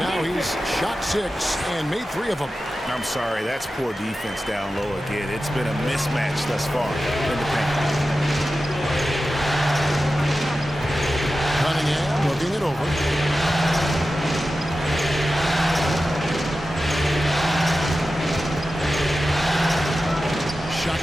now. He's shot 6 and made 3 of them. I'm sorry, that's poor defense down low again. It's been a mismatch thus far in the paint. Cunningham looking it over. Shot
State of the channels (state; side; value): normal; both; correlation 0.93